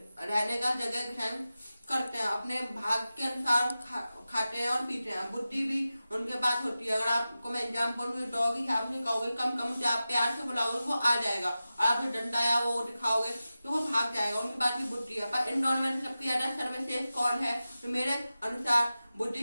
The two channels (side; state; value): both; inverted; correlation -0.94